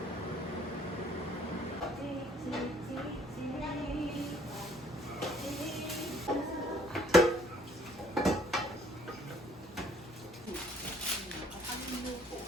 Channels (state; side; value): normal; both; correlation 0.61